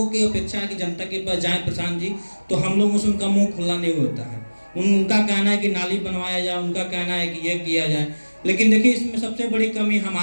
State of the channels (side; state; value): both; inverted; correlation -1.00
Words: की अपेक्षा है कि जनता के पास जाए प्रशांत जी, तो हम लोगों से उनका मुंह खुला नहीं होता है। उनका कहना है कि नाली बनवाया जाए, उनका कहना है कि ये किया जाए, लेकिन देखिए इसमें सबसे बड़ी कमी